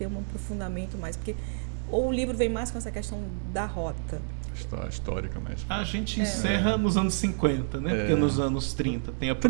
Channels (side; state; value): left; silent; digital silence